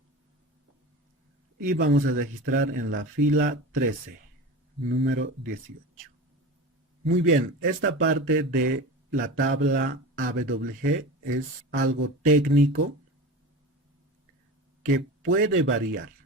Y vamos a registrar en la fila 13, número 18. Muy bien, esta parte de la tabla AWG es algo técnico que puede variar.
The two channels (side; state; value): both; normal; correlation 0.30